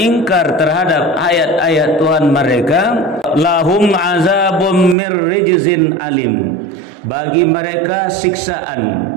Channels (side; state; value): left; drops out; at 5.0 s